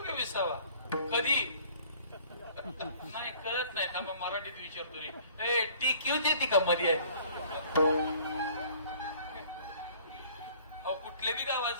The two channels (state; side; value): inverted; both; correlation -0.53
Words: का विसावा? कधी नाही कळत नाही. थांबा मराठीत विचारतो. ती क्यू देते का मध्ये? अहो कुठल्या बी गावात